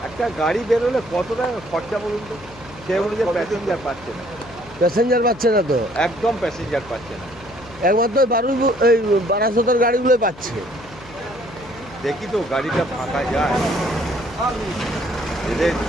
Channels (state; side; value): noise; left; hum, 20 dB below the sound